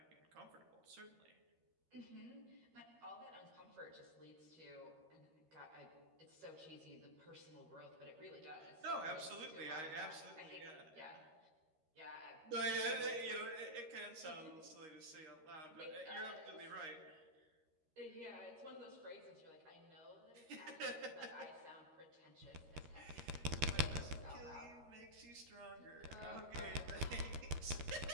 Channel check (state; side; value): late; left; 13 ms